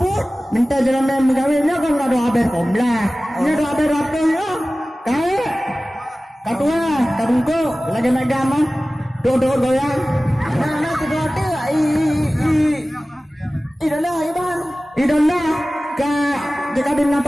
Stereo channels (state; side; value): normal; both; correlation 0.97